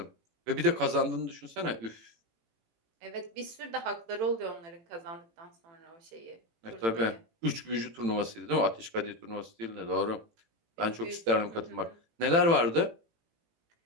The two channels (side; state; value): left; late; 18 ms